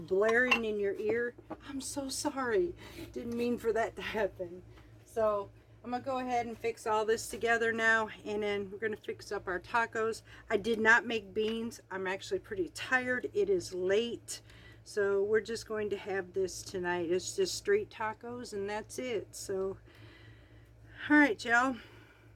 blaring in your ear, I'm so sorry. Didn't mean for that to happen. So I'm going to go ahead and fix all this together now. And then we're going to fix up our tacos. I did not make beans. I'm actually pretty tired. It is late. So we're just going to have this tonight. It's just street tacos and that's it. So, alright y'all.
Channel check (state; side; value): identical; both; correlation 1.00